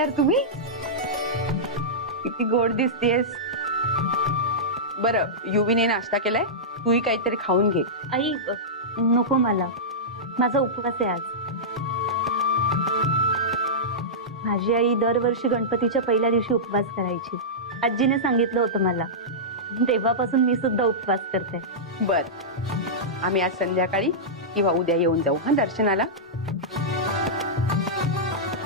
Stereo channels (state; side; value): normal; both; correlation -0.13